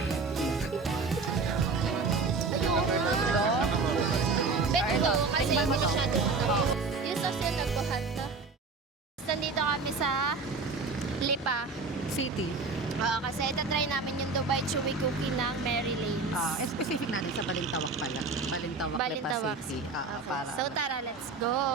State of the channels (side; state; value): left; quieter; 4.2 dB